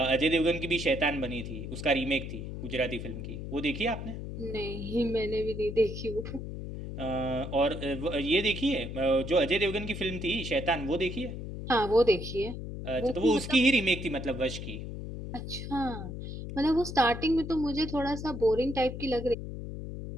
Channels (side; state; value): left; noise; hum, 7 dB below the sound